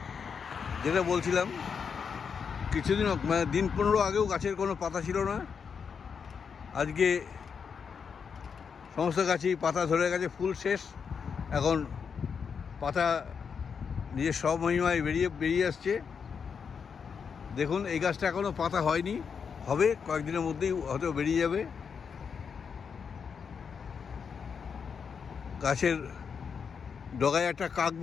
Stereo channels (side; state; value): right; quieter; 6.3 dB